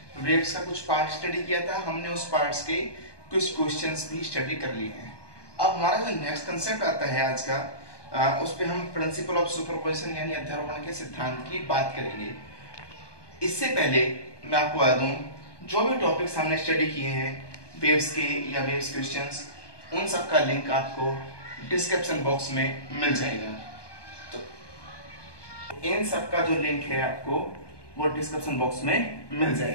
वेव्स का कुछ पार्ट स्टडी किया था हमने, उस पार्ट्स के कुछ क्वेश्चंस भी स्टडी कर लिए हैं। अब हमारा जो नेक्स्ट कंसेप्ट आता है आज का, उस पर हम प्रिंसिपल ऑफ सुपरपोजिशन यानी अध्यारोपण के सिद्धांत की बात करेंगे। इससे पहले मैं आपको बता दूं, जो भी टॉपिक्स हमने स्टडी किए हैं वेव्स के या वेव्स क्वेश्चंस, उन सब का लिंक आपको डिस्क्रिप्शन बॉक्स में मिल जाएगा। तो इन सब का जो लिंक है आपको वो डिस्क्रिप्शन बॉक्स में मिल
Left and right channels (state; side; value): late; right; 1.2 ms